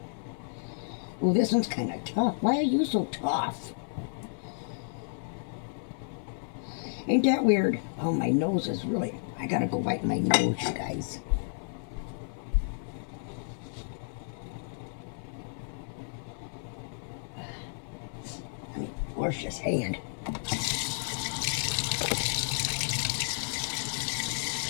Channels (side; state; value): right; silent; 55 dB below the other